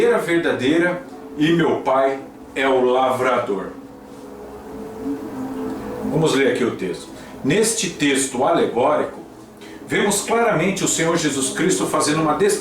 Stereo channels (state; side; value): identical; both; correlation 1.00